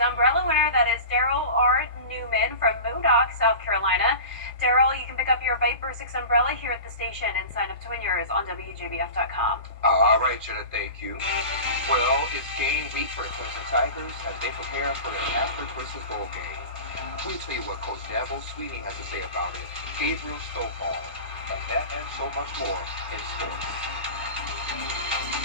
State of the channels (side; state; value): both; inverted; correlation -0.33